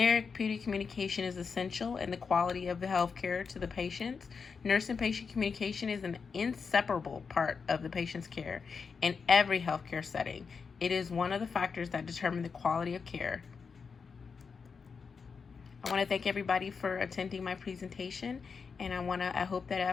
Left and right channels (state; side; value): quieter; right; 5.5 dB